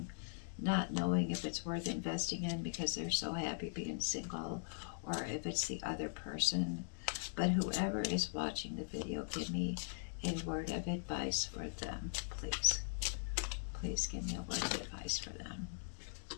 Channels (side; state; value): right; silent; digital silence